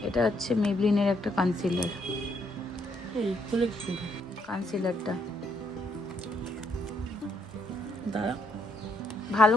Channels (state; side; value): normal; both; correlation 0.73